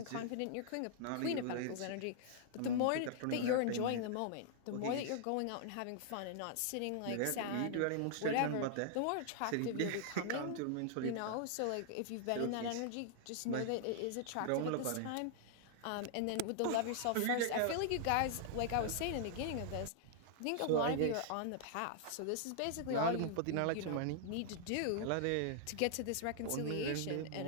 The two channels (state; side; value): different; both; correlation -0.01